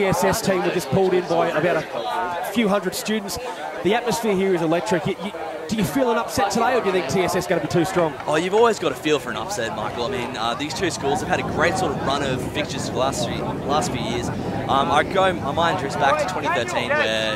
team were just pulled in by about a few hundred students. The atmosphere here is electric. Do you feel an upset today, or do you think TSS is going to be too strong? Oh, you've always got a feel for an upset, Michael. I mean, these two schools have had a great sort of run of fixtures for the last few years. My mind drifts back to 2013, where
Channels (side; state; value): both; identical; correlation 1.00